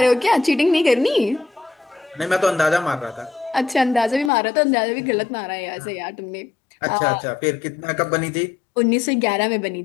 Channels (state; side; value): drops out; right; at 4.3 s